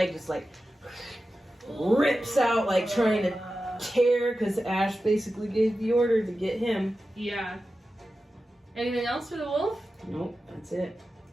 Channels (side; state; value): both; normal; correlation 0.93